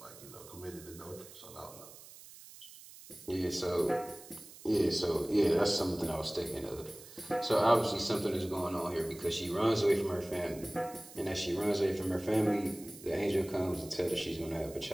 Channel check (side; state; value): right; noise; hiss, 18 dB below the sound